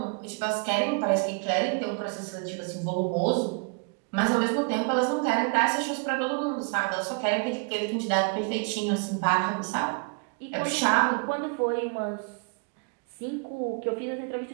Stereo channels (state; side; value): quieter; left; 35.2 dB